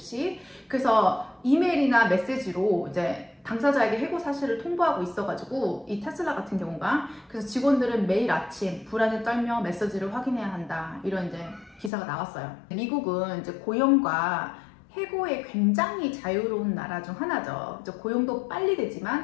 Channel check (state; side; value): drops out; right; at 11.9 s